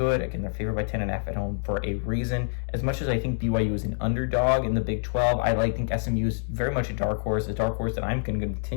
Again, they're favored by 10.5 at home for a reason. As much as I think BYU is an underdog in the Big 12, I think SMU is very much a dark horse that I'm going to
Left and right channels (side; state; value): right; silent; digital silence